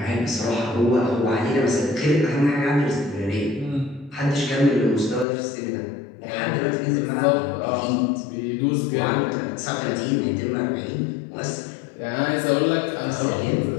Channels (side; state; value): right; drops out; at 5.2 s